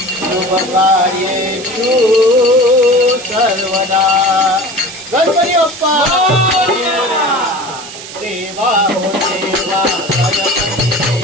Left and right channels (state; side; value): noise; right; hiss, 13 dB below the sound